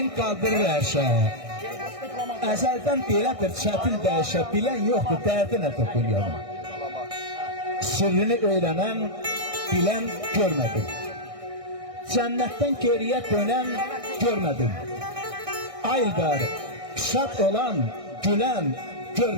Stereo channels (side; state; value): left; late; 1.6 ms